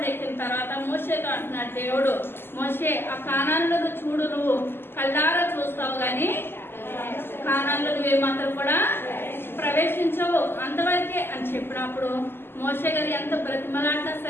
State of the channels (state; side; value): late; right; 0.11 ms